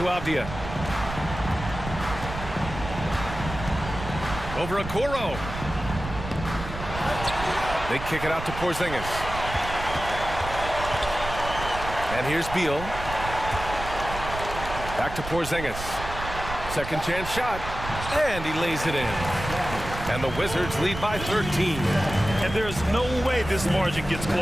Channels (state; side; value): noise; right; rumble, 9 dB below the sound